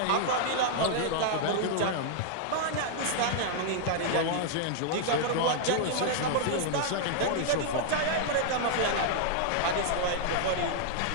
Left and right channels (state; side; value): different; both; correlation 0.00